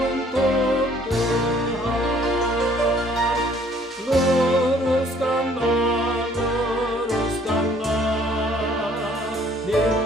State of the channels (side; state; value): both; normal; correlation 0.59